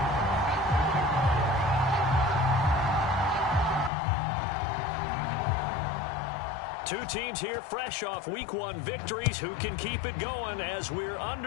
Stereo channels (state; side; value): drops out; right; at 3.9 s